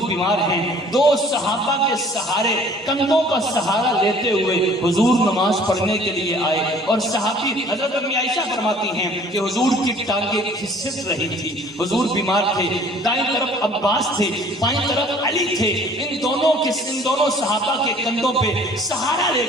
بیمار ہیں، دو صحابہ کے سہارے، کندھوں کا سہارا لیتے ہوئے حضور نماز پڑھنے کے لیے آئے، اور صحابی حضرت امی عائشہ فرماتی ہیں کہ حضور کی ٹانگیں کھسک رہی تھی، حضور بیمار تھے، دائیں طرف عباس تھے، بائیں طرف علی تھے، ان دونوں صحابہ کے کندھوں پہ سہارا لے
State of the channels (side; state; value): both; normal; correlation 0.53